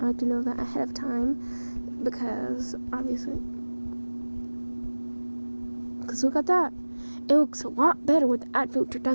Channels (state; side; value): inverted; both; correlation -1.00